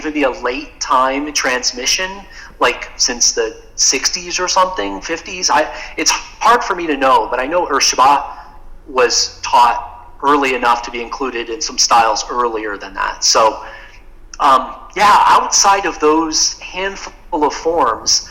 be a late time transmission, like since the 60s or something, 50s. It's hard for me to know, but I know Urshiba was taught early enough to be included in some styles earlier than that. So, outside of those handful of forms,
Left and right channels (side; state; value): both; identical; correlation 1.00